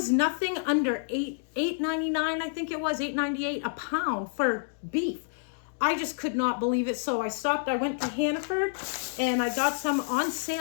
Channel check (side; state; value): right; silent; digital silence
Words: nothing under $8.99. I think it was $8.98 a pound for beef. I just could not believe it. So I stopped. I went to Hannaford and I got some on